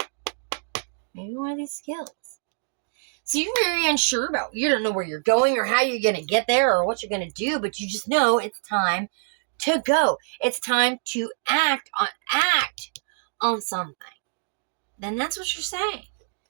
Maybe one of these skills. So you're very unsure about, you don't know where you're going or how you're going to get there or what you're going to do, but you just know it's time to go. It's time to act on something. Then that's what you're saying.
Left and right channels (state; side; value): silent; left; digital silence